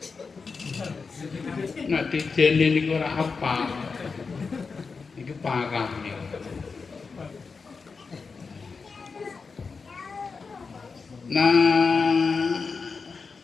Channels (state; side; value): quieter; right; 4.8 dB